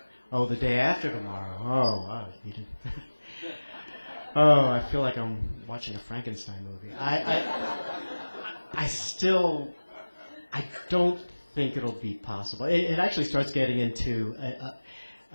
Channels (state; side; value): inverted; both; correlation -1.00